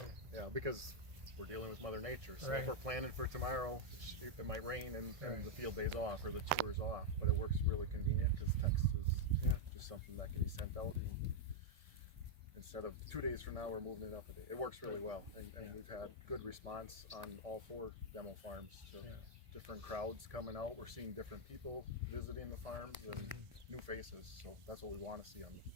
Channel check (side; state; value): left; late; 1.7 ms